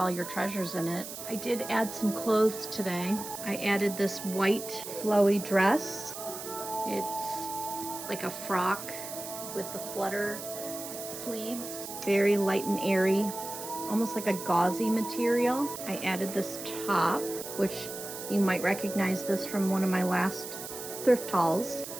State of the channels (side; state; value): right; noise; hiss, 9 dB below the sound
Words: your treasures in it. I did add some clothes today. I added this white flowy dress. It's like a frock with the flutter sleeves. Very light and airy, almost like a gauzy material. I added this top, which you might recognize this from one of my last thrift hauls.